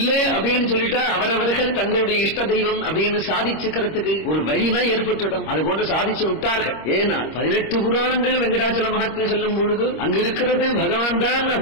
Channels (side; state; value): right; late; 26 ms